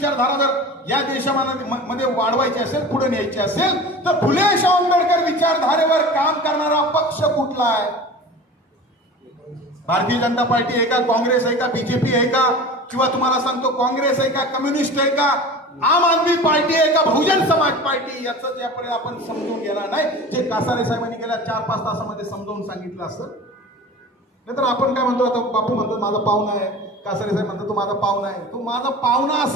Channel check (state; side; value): normal; both; correlation 0.36